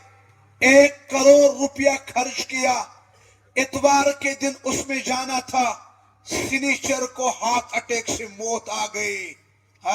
1 کروڑ روپیہ خرچ کیا. اتوار کے دن اس میں جانا تھا، سنیچر کو ہارٹ اٹیک سے موت آ گئی.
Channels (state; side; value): identical; both; correlation 1.00